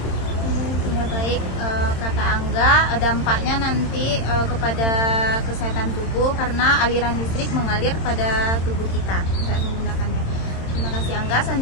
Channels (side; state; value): right; late; 27 ms